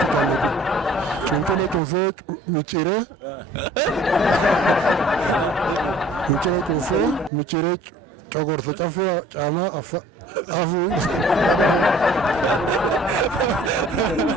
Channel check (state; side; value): normal; both; correlation 0.52